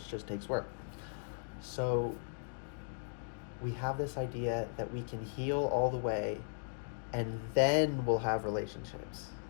just takes work. So we have this idea that we can heal all the way, and then we'll have relationships.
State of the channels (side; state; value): right; silent; digital silence